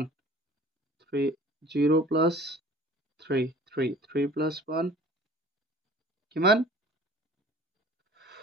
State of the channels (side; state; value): both; normal; correlation 0.48